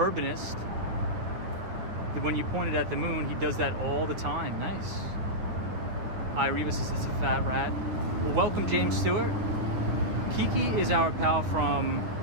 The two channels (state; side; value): late; left; 9.3 ms